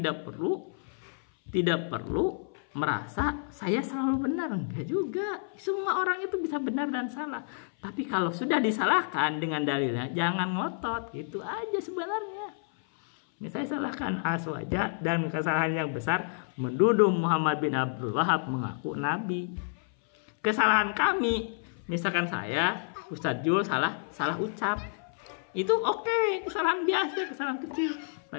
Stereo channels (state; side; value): silent; right; 58 dB below the other